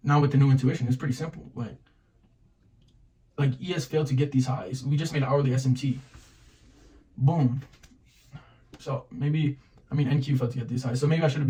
now with the new intuition, it's pretty simple. Like ES failed to get these highs. We just made hourly SMT. Boom. So maybe NQ failed to get these highs. So maybe I should have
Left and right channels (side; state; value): both; identical; correlation 1.00